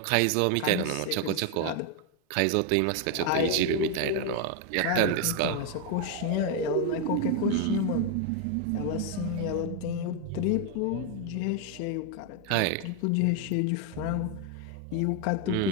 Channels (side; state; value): both; different; correlation 0.01